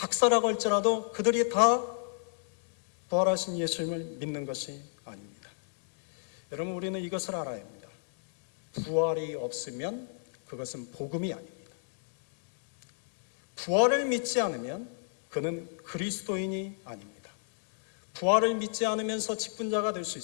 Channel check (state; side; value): silent; right; digital silence